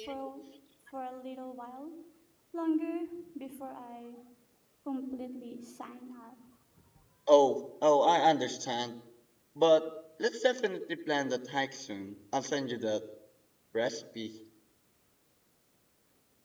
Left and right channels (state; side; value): identical; both; correlation 1.00